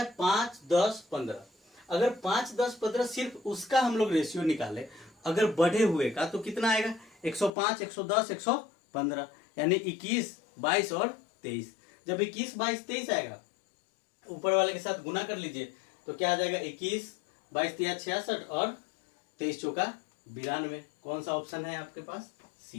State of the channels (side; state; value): right; drops out; at 7.5 s